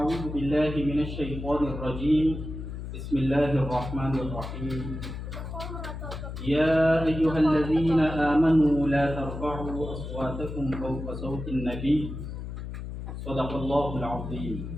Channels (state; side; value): noise; left; hum, 8 dB below the sound